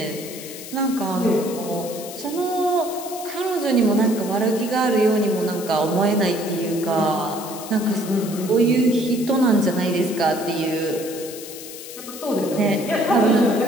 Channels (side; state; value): left; noise; hiss, 12 dB below the sound